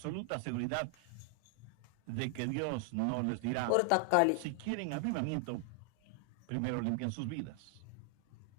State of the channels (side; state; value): both; different; correlation 0.00